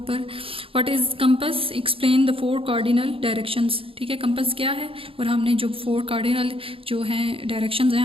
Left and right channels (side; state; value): left; late; 0.27 ms